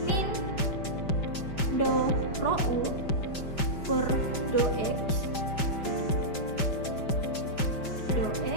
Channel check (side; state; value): right; late; 5.1 ms